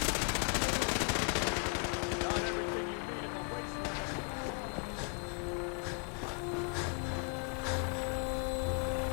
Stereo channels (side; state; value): right; quieter; 39.1 dB